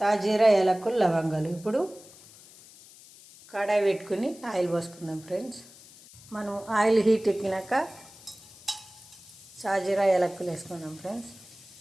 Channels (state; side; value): noise; left; hiss, 21 dB below the sound